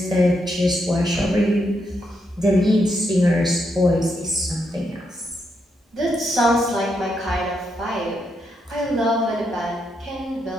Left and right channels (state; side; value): normal; both; correlation 0.80